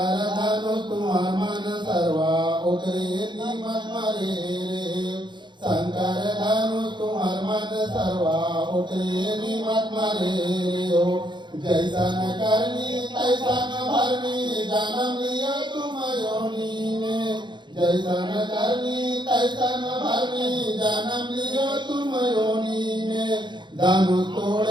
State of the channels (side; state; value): left; late; 0.22 ms